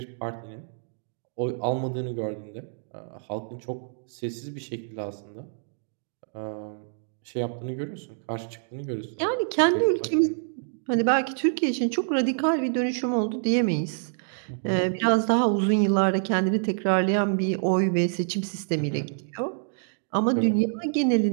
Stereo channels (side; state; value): left; silent; digital silence